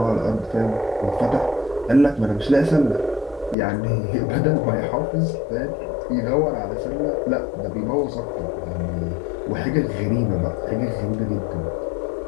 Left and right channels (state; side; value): drops out; right; at 3.6 s